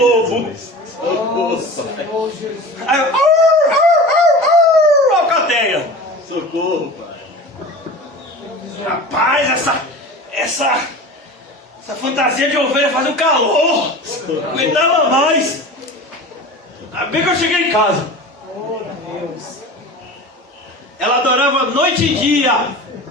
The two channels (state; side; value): normal; both; correlation 0.34